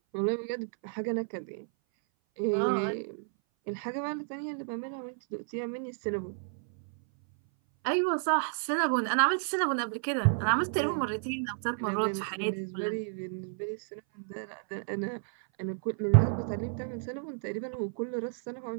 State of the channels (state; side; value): silent; left; 57 dB below the other